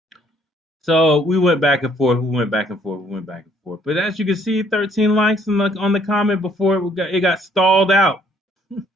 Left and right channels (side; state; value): both; normal; correlation 0.63